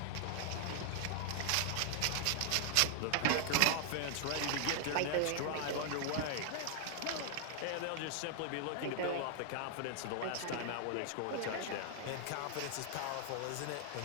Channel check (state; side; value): different; both; correlation 0.00